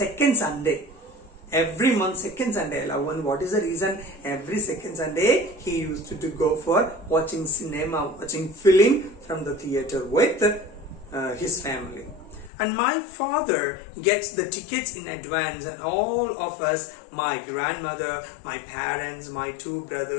Sunday. Every month, second Sunday, I love. And what is the reason? Every second Sunday, he used to go for watching cinema, watching film from the theater with his family. And my father gets the tickets in advance, and all of us, my grandmother, my parents, my two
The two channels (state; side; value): drops out; right; at 12.5 s